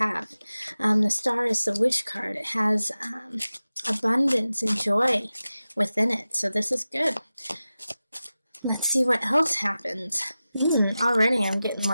The star is the wish card. It has abundance and joy within it. So this is good. Let's see what else happens. Already I'm getting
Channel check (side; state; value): both; inverted; correlation -0.95